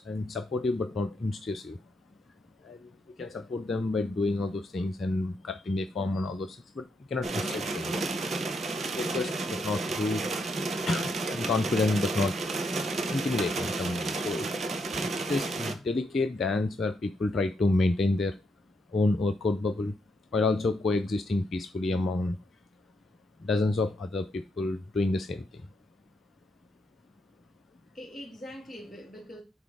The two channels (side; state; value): both; normal; correlation 0.79